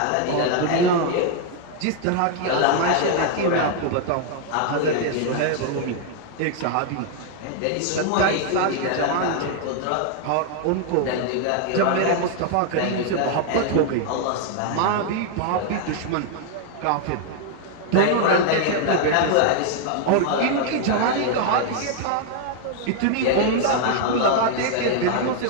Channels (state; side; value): different; both; correlation 0.00